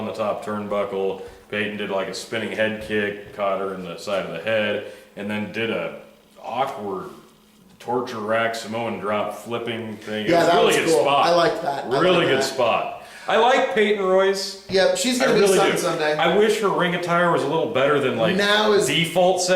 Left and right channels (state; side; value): identical; both; correlation 1.00